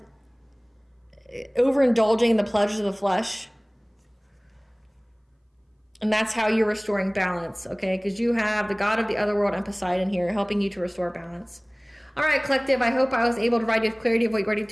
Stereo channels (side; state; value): both; identical; correlation 1.00